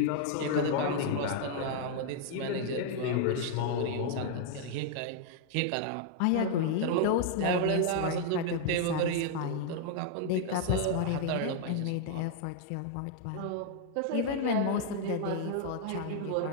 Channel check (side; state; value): both; different; correlation 0.00